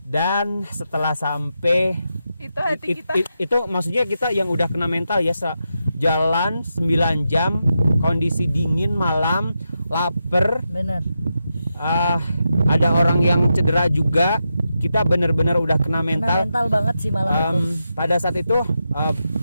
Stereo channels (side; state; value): both; inverted; correlation -0.87